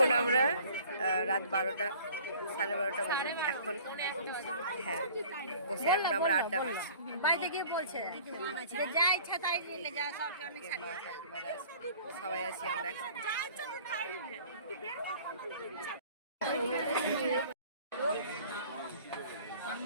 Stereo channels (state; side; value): inverted; both; correlation -0.49